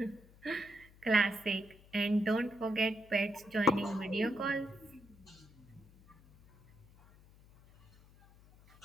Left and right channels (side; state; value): left; noise; hum, 25 dB below the sound